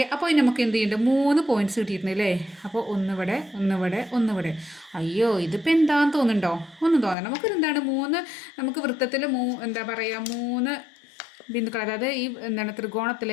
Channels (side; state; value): right; drops out; at 7.2 s